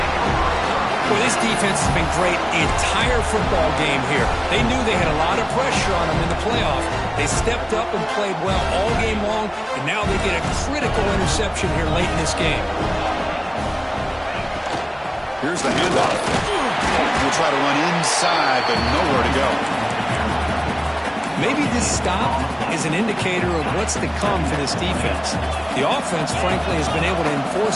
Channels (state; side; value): identical; both; correlation 1.00